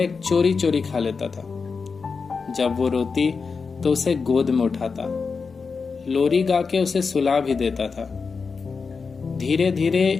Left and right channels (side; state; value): right; quieter; 5.0 dB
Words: चोरी चोरी खा लेता था। जब वो रोती तो उसे गोद में उठाता, लोरी गा के उसे सुला भी देता था। धीरे